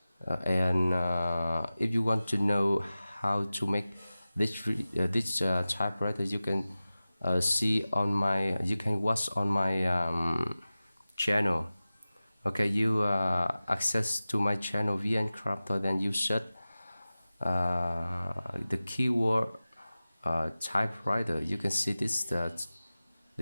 and if you want to know how to make this typewriter, you can you can watch on my channel. Okay, you access to my channel VN Crafter, then you search the keyword typewriter. You can see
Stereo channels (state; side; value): inverted; both; correlation -0.96